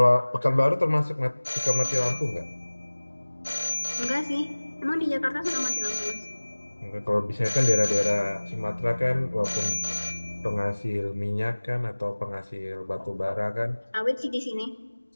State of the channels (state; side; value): inverted; both; correlation -1.00